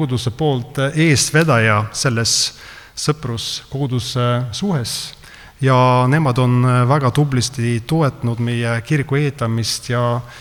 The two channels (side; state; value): both; identical; correlation 1.00